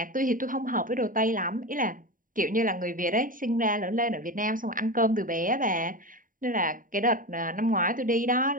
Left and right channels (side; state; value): left; late; 0.39 ms